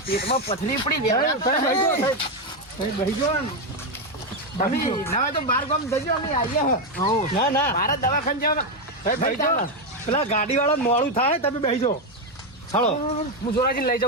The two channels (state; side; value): normal; both; correlation 0.07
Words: પેટમાં પથરી પડી ગયા. બેહજો તમે ના હોય તો બાર ગામ જજો અમે આવીએ હ ના ના મારા દવાખાને જવા બેહજો પેલા ગાડી વાળા મોડું થાય તમે બેહજો હાલો હું જોરાજી લઈ